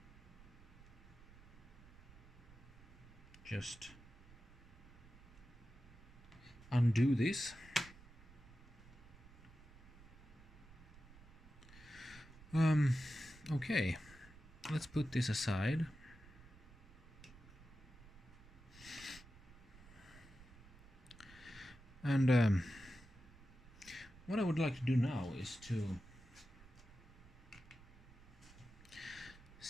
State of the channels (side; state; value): right; noise; rumble, 20 dB below the sound